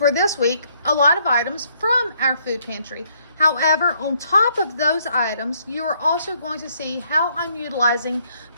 this week a lot of items from our food pantry. However, on top of those items, you are also going to see how I'm utilizing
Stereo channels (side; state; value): both; inverted; correlation -0.69